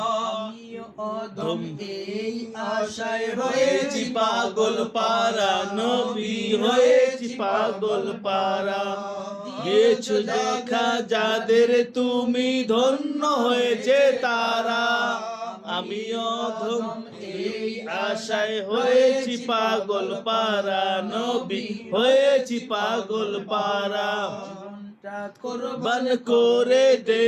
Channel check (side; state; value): both; identical; correlation 1.00